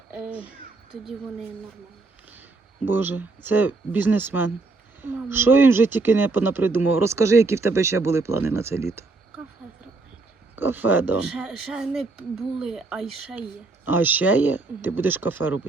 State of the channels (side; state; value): left; quieter; 3.6 dB